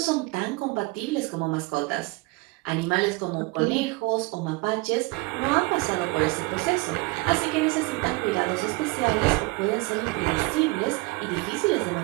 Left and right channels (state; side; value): quieter; left; 24.1 dB